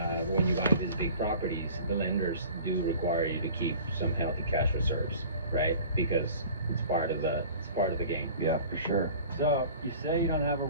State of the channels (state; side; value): inverted; both; correlation -0.44